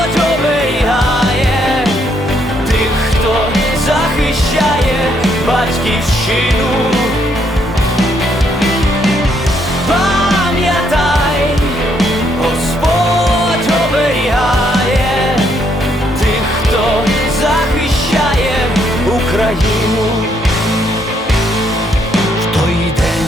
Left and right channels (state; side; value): normal; both; correlation 0.72